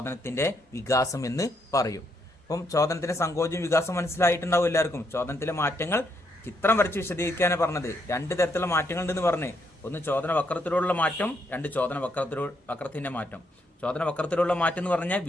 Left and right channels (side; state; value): both; normal; correlation 0.76